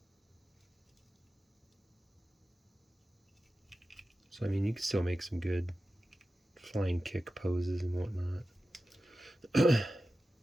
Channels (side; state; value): both; normal; correlation 0.94